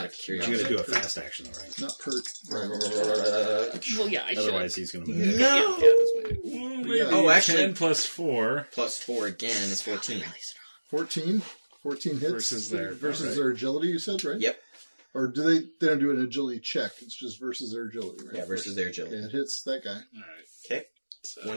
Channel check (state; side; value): inverted; both; correlation -1.00